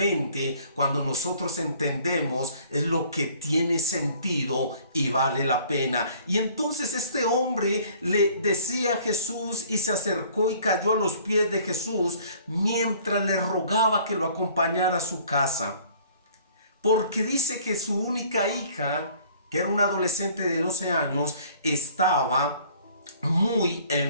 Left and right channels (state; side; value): inverted; both; correlation -0.55